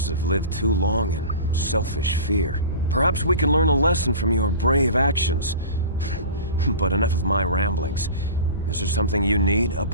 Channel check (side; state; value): both; inverted; correlation -0.35